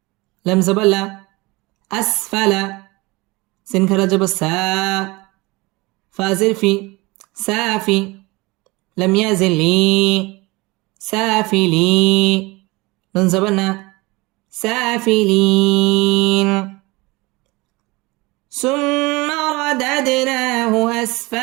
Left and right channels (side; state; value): left; quieter; 23.6 dB